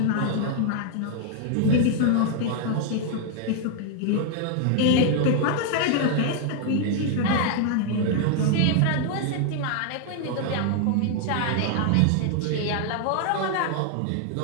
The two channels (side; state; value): both; different; correlation 0.00